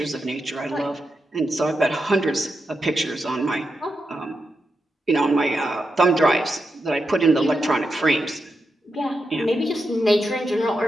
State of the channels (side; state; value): both; normal; correlation 0.87